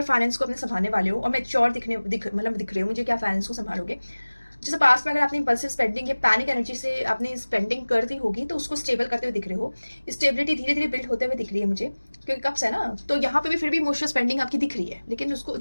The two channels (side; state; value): both; inverted; correlation -1.00